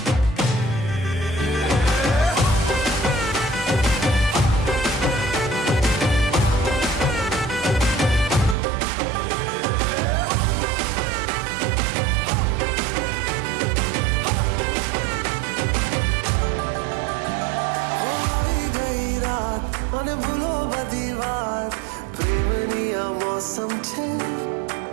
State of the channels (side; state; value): left; drops out; at 8.6 s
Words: आई गई रात मैंने भूलो बदी बात प्रेमनिया मौसम छे